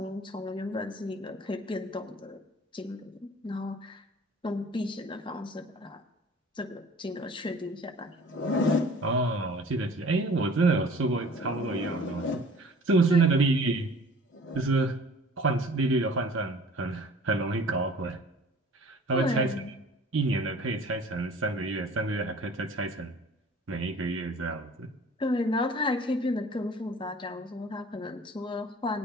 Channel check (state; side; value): normal; both; correlation 0.47